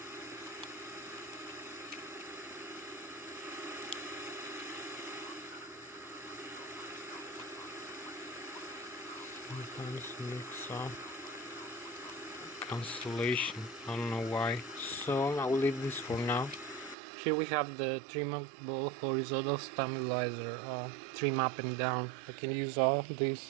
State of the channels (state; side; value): drops out; left; at 16.9 s